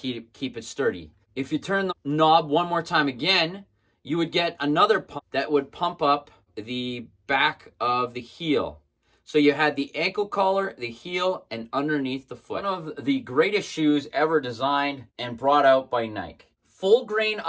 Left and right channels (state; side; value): identical; both; correlation 1.00